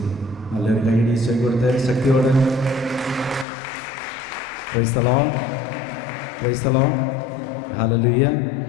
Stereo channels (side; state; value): right; drops out; at 3.5 s